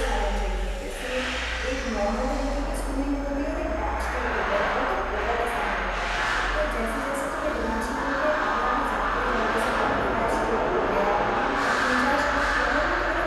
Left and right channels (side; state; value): both; identical; correlation 1.00